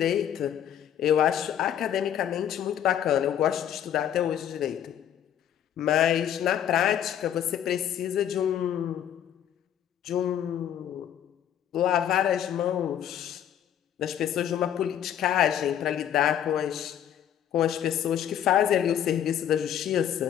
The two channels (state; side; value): quieter; right; 10.0 dB